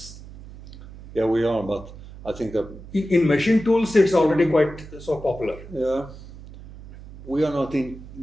Yeah, we are, but I think that in machine tools, it's already quite so popular. Yeah, we are not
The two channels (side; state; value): right; noise; hum, 16 dB below the sound